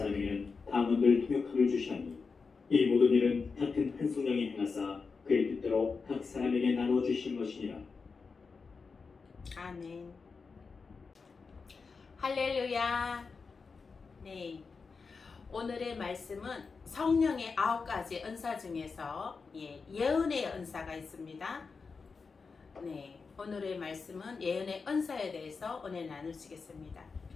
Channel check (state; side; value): quieter; right; 4.8 dB